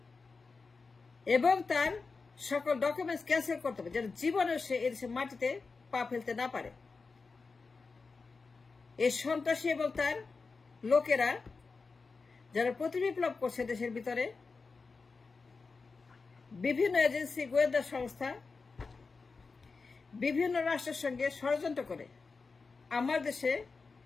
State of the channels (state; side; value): quieter; right; 4.4 dB